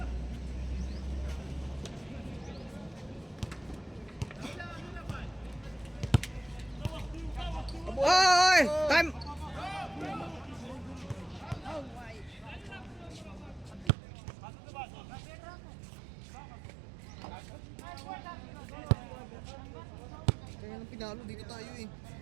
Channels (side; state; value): left; drops out; at 13.9 s